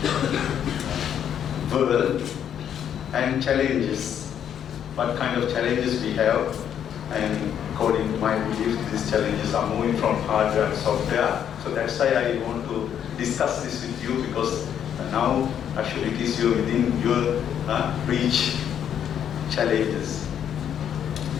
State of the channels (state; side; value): quieter; right; 9.2 dB